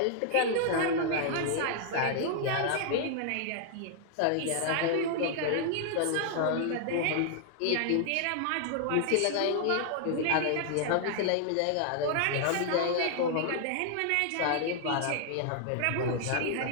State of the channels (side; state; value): both; different; correlation 0.00